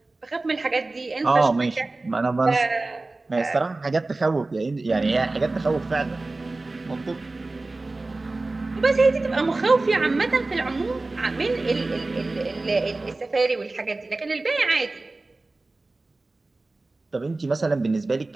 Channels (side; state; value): left; quieter; 3.2 dB